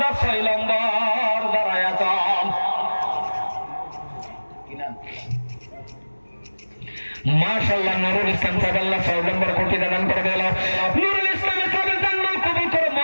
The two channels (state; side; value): inverted; both; correlation -1.00